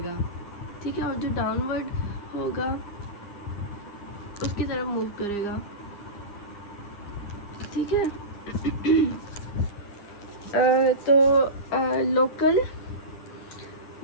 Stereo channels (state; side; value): late; right; 10 ms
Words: ठीक है, और जो डाउनवर्ड होगा उसकी तरफ मूव करेगा। ठीक है तो लोकल